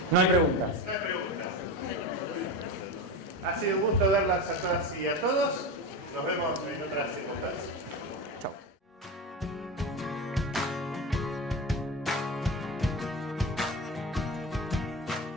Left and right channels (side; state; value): both; normal; correlation 0.23